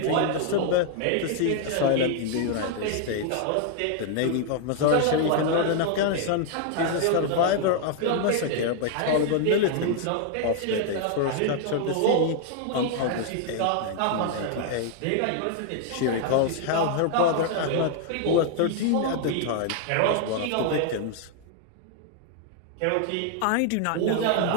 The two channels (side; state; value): both; different; correlation 0.00